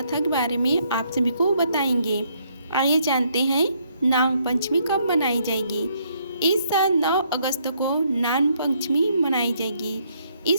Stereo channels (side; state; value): both; inverted; correlation -0.70